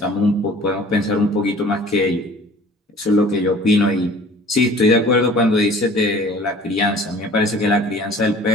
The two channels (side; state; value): both; normal; correlation 0.48